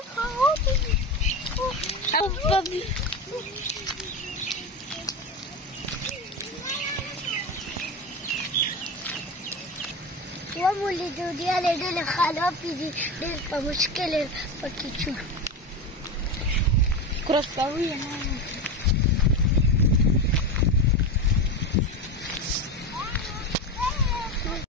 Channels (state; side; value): normal; both; correlation 0.21